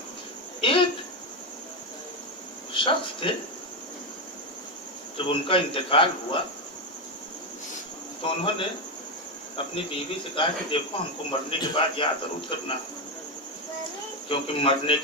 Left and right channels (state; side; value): normal; both; correlation 0.09